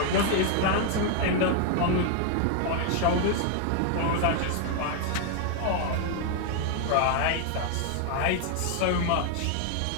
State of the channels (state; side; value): different; both; correlation 0.00